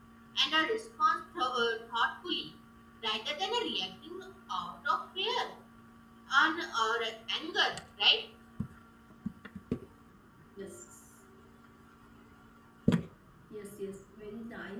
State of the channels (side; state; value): both; identical; correlation 1.00